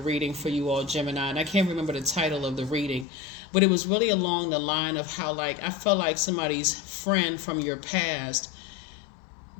for you all, Gemini, and I can't remember the title of the reading. But it was really along the line of how, like, I felt like somebody's friend from your past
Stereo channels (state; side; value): drops out; right; at 3.1 s